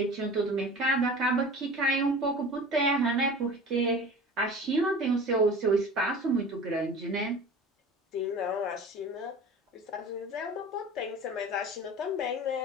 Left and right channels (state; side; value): normal; both; correlation 0.38